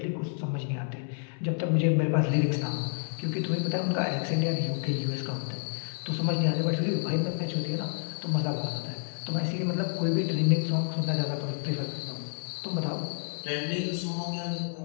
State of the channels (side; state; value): right; silent; 58 dB below the other